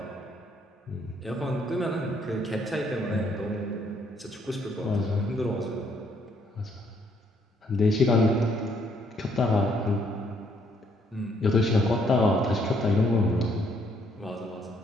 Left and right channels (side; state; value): both; normal; correlation 0.69